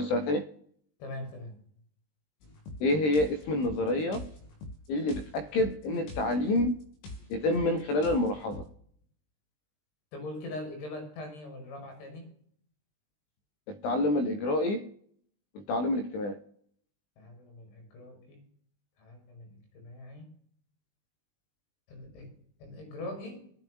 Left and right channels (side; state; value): right; late; 20 ms